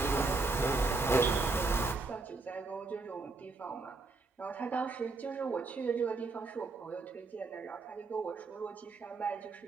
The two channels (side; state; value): left; quieter; 3.7 dB